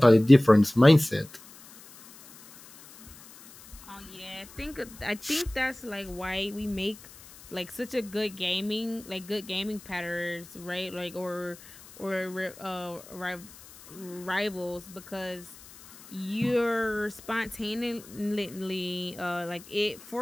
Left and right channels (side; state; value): left; noise; hiss, 20 dB below the sound